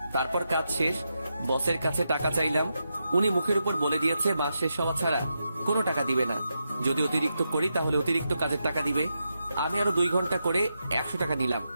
তারপর কাজ শেষ, বসের কাছে টাকা চাইলাম। উনি মুখের উপর বলে দিয়েছে মাস শেষ হওয়া ছাড়া কোনো টাকা দিবে না। যদি অতিরিক্ত করি তাহলে অতিরিক্ত কাজের টাকা দিবে। আমি আরো 2 ঘন্টা করে 100 টাকা নিলাম,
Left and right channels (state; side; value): inverted; both; correlation -0.86